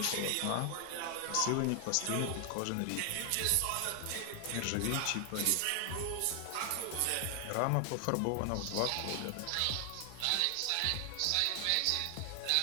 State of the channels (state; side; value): different; both; correlation 0.00